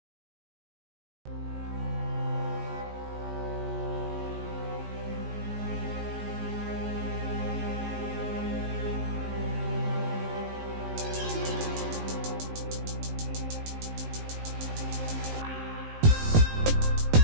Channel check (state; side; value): late; left; 19 ms